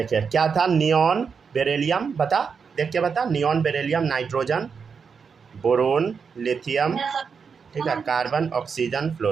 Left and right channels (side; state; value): left; quieter; 5.9 dB